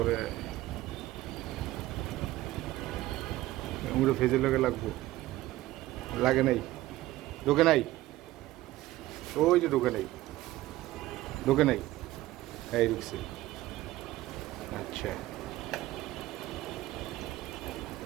হেমুটে ফেজে লাগবো লাগে নাই ঢোকে নাই ওই যে ঢোকে নাই এই ঢুকছে আচ্ছা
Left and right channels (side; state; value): left; quieter; 16.6 dB